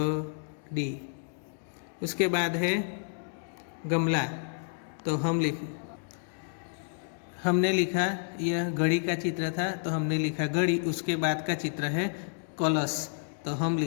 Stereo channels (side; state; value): right; silent; digital silence